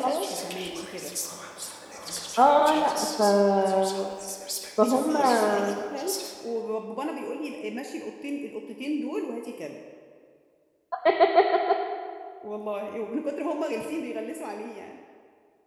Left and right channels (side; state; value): both; identical; correlation 1.00